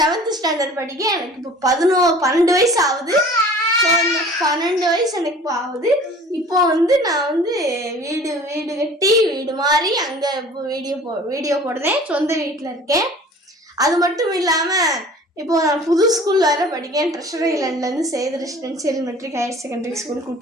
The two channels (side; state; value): both; normal; correlation 0.46